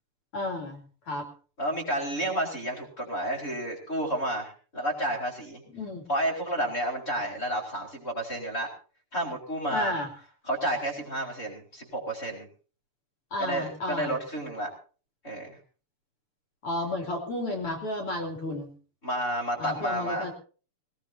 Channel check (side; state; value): right; late; 6.8 ms